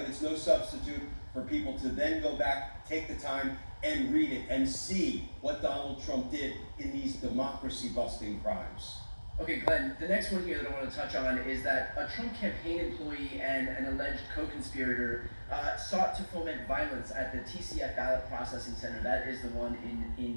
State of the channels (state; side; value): inverted; both; correlation -1.00